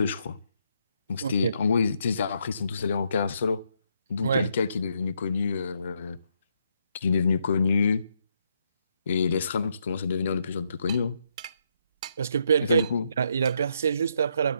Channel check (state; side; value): inverted; both; correlation -0.76